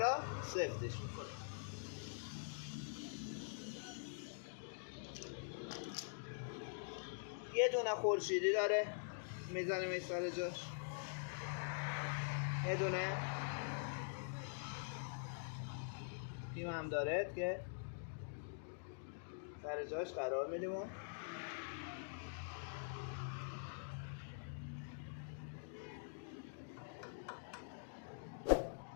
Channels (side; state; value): right; silent; digital silence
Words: سفتش میکنه. یه دونه خورشیدی داره میزنیم این سر جاش. یه دونه پیم هم داره که سر جاش قرار میدیم.